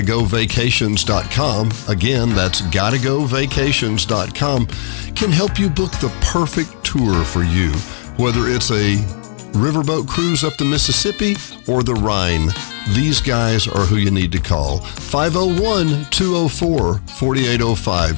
again, that's GottaGoVacations.com, can help you book the perfect tour for you, whether it's a riverboat cruise up the Mississippi or the Rhine. These guys are who you need to call.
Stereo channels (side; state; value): right; silent; 66 dB below the other